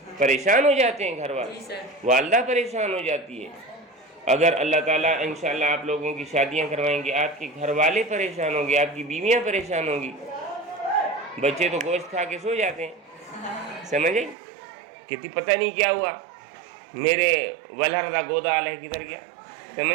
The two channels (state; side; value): drops out; left; at 14.4 s